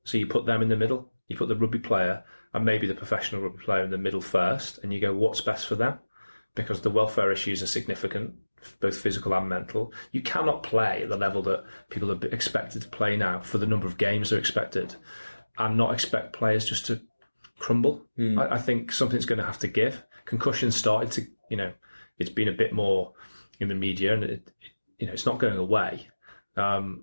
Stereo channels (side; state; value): both; inverted; correlation -1.00